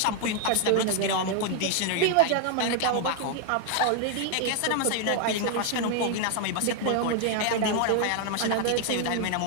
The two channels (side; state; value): both; different; correlation 0.00